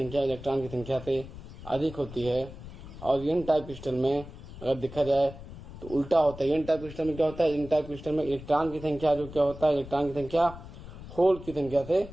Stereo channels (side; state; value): left; noise; rumble, 14 dB below the sound